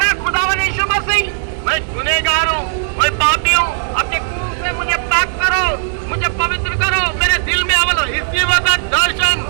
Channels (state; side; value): silent; left; digital silence